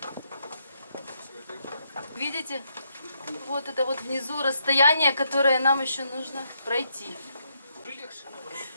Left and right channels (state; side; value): inverted; both; correlation -0.77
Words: Видите? Вот это вот внизу расстояние, которое нам еще нужно пройти.